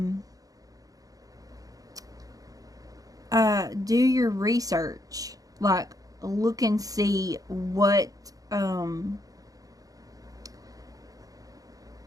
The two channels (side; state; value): left; late; 0.17 ms